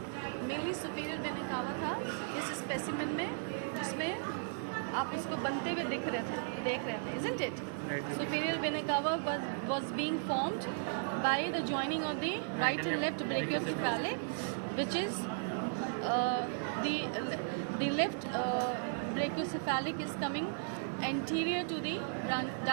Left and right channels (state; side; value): silent; left; digital silence